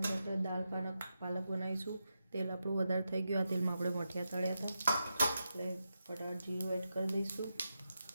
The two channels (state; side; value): inverted; both; correlation -0.87